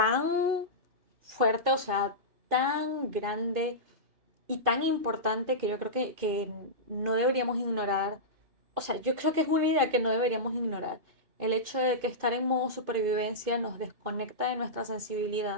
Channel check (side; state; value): left; late; 2.5 ms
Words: fuerte, o sea, tan grande y tan importante que yo creo que no deberíamos ignorar. O sea, yo creo que es una idea que no deberíamos ignorar. El hecho de que estar en modo supervivencia nos desconecta de nuestra